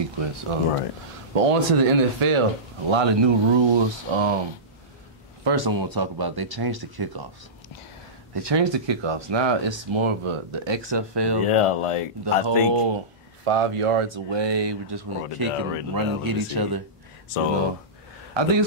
Right. But on to the NFL, a lot of new rules. First I want to talk about, they changed the kickoffs. Now it's more of the XFL. Yeah, like the whole 5 yards away. We're just going to kick and run and hit each other. So I think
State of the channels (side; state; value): both; normal; correlation -0.19